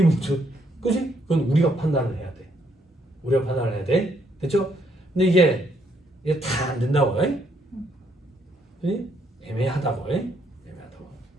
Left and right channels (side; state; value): both; normal; correlation 0.72